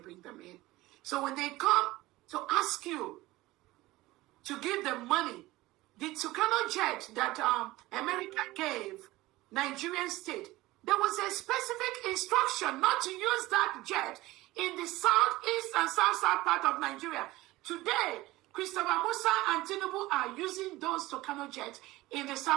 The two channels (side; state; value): left; quieter; 18.7 dB